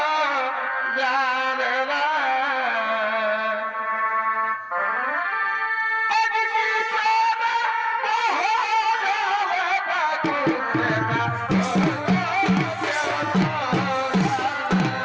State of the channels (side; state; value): both; identical; correlation 1.00